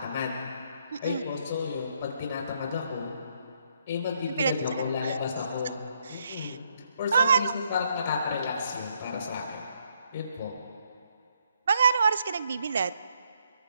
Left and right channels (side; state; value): both; inverted; correlation -0.73